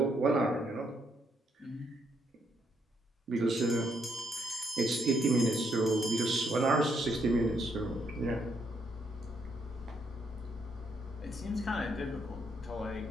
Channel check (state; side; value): normal; both; correlation 0.75